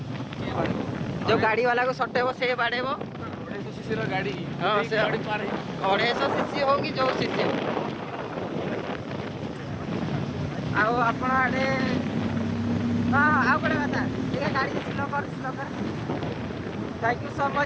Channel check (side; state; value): both; identical; correlation 1.00